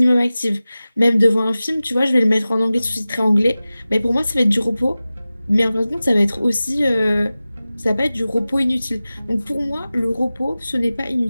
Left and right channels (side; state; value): both; inverted; correlation -0.96